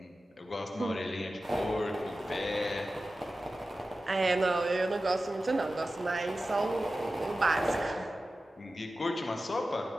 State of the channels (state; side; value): normal; both; correlation 0.94